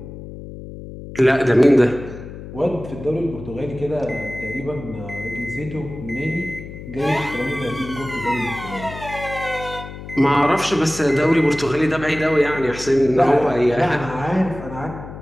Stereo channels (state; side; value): noise; left; hum, 12 dB below the sound